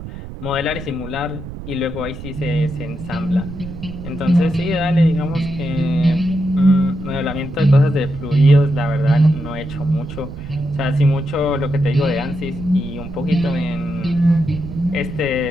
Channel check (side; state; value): right; noise; rumble, 11 dB below the sound